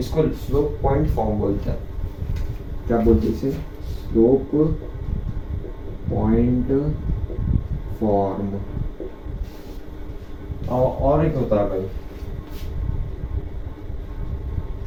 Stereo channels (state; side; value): identical; both; correlation 1.00